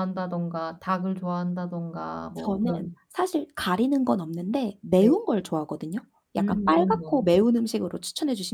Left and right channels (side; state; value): both; identical; correlation 1.00